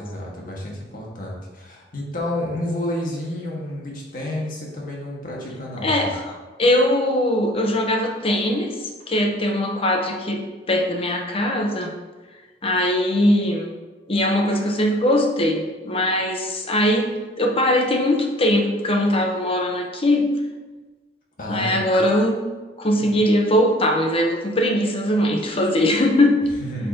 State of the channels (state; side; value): normal; both; correlation 0.52